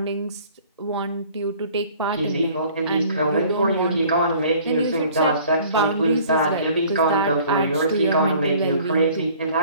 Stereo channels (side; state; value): both; inverted; correlation -0.52